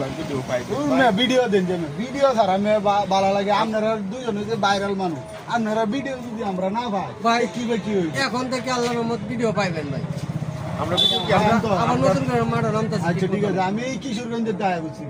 ভিডিও পাই ভিডিও দেন যেন ভিডিও ছাড়া আমি ভালো লাগে আপনারা দুজনে যে ভাইরাল মানুষ আপনারা ভিডিও যদি আমরা না পাই ভাই, কি কি হইবে এখন থেকে আল্লাহর রহমত ভিডিও পাইবেন ভাই আমরা ভিডিও কি আমরা- আমরা- আবার নতুন করে মাঠে নামতেছি আচ্ছা ঠিক আছে আমি এই কিশোরগঞ্জের দায় বুঝছি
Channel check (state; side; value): identical; both; correlation 1.00